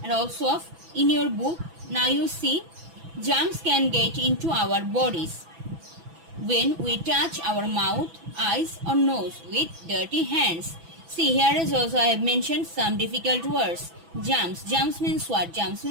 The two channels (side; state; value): left; late; 6.0 ms